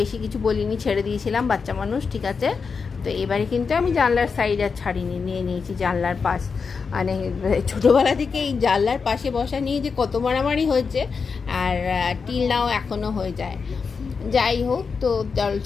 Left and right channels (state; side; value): quieter; right; 5.3 dB